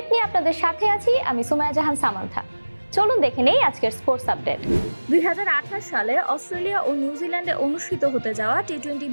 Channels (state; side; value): inverted; both; correlation -1.00